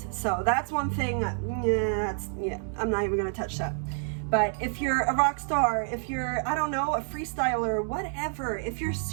So that's one thing. I'm not even going to touch that. But if you're a rock star, if you're, I don't know, a freestyler, whatever, if you're a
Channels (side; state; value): left; silent; 59 dB below the other